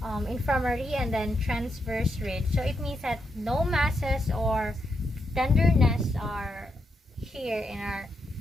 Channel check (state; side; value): normal; both; correlation 0.82